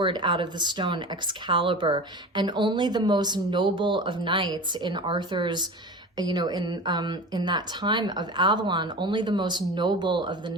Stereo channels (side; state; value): both; normal; correlation 0.32